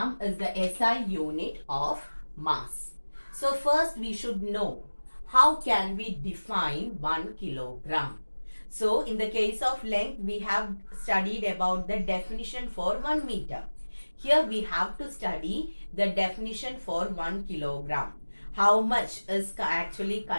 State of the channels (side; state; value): both; inverted; correlation -1.00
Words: is the SI unit of mass. So, first we should know how can we define 1 kilogram. So, in the case of length, we have studied about the definition for 1 meter. Here we have to study the definition for 1 kilogram. How much is actually